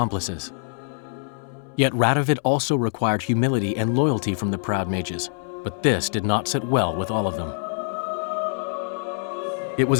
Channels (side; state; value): right; silent; 62 dB below the other